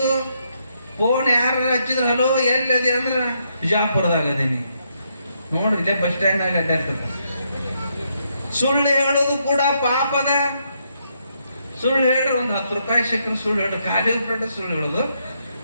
ಫೋನ್ ಯಾರು ಹಚ್ಚಿದ್ರು, ಹಲೋ ಎಲ್ಲದೆ ಅಂದ್ರೆ ಬಿಜಾಪುರದಾಗದೀನಿ ನೋಡ್ರಿ, ಇಲ್ಲೇ ಬಸ್ ಸ್ಟ್ಯಾಂಡ್ ಆಗ ಅಡ್ಡಾಡ್ತದ. ಸುಳ್ಳು ಹೇಳೋದು ಕೂಡ ಪಾಪದ. ಸುಳ್ಳು ಹೇಳ್ರಿ, ಒಂದು ₹10 ಸಿಕ್ಕರು ಸುಳ್ಳು ಹೇಳ್ರಿ, ಖಾಲಿ ಉಪ್ಪಿಟ್ಟು ಸುಳ್ಳು ಹೇಳೋದು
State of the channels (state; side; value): inverted; both; correlation -0.77